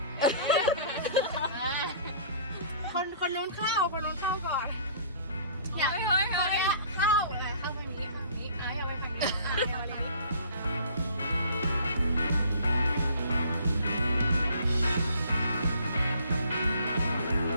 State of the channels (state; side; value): inverted; both; correlation -0.52